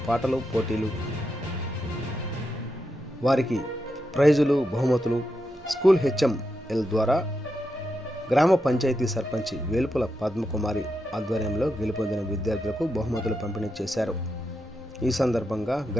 పాటలు పోటీలు, వారికి ప్రైజులు, బహుమతులు స్కూల్ హెచ్ఎంఎల్ ద్వారా గ్రామ పంచాయతీ సర్పంచ్ వేల్పుల పద్మకుమారి ఆధ్వర్యంలో గెలుపొందిన విద్యార్థులకు బహుమతులు పంపిణీ చేశారు. ఈ సందర్భంగా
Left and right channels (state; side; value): normal; both; correlation 0.85